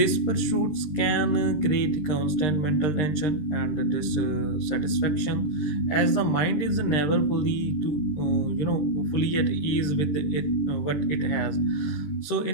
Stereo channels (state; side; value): late; right; 13 ms